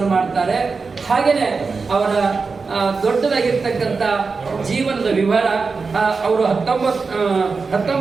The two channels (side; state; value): left; quieter; 4.6 dB